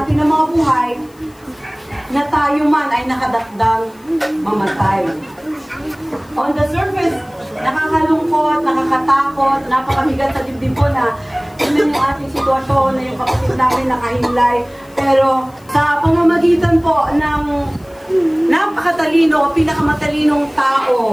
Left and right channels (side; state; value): left; noise; hiss, 30 dB below the sound